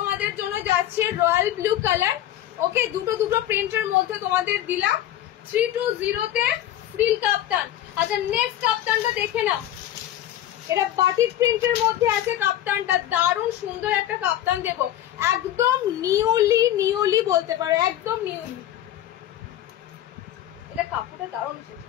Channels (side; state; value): right; quieter; 12.4 dB